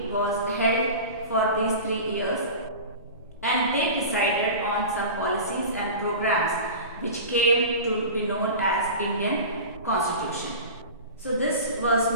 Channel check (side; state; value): both; inverted; correlation -0.32